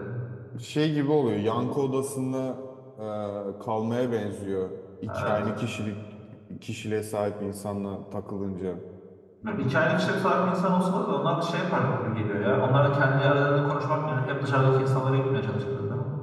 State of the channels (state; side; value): identical; both; correlation 1.00